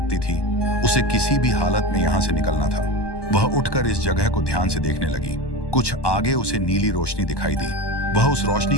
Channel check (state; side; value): late; right; 1.1 ms